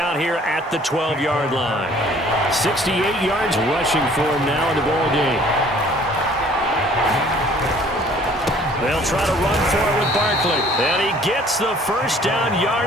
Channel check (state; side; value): normal; both; correlation 0.55